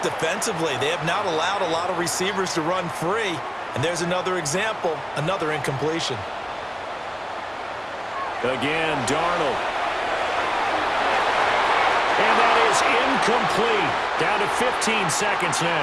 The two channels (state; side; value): identical; both; correlation 1.00